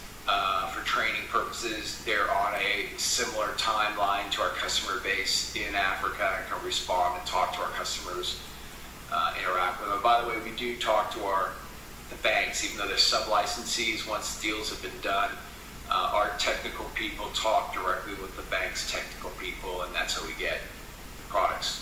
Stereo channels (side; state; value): both; identical; correlation 1.00